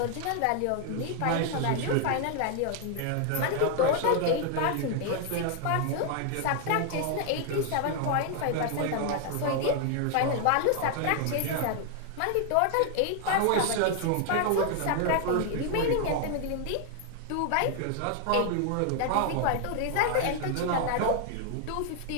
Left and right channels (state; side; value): different; both; correlation 0.00